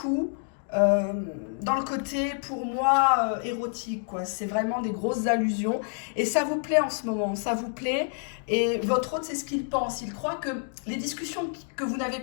dans le côté, pour moi, érotique, quoi. C'est vraiment des grosses allusions. Et ça vous plaît en ce moment, ça vous plaît. Et votre autre, c'est ce qu'il pense. Il croit que les discussions que vous n'avez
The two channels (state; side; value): silent; right; 57 dB below the other